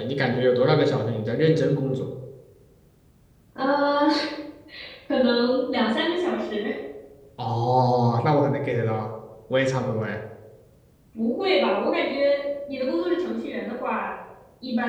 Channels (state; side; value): identical; both; correlation 1.00